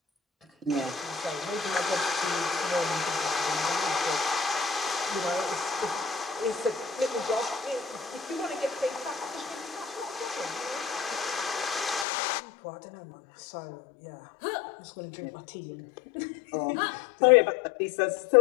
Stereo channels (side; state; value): right; drops out; at 12.1 s